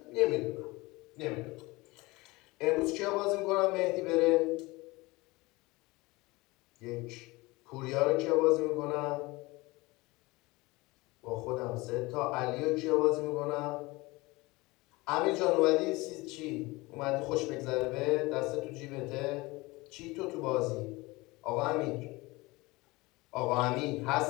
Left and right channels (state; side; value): quieter; right; 22.5 dB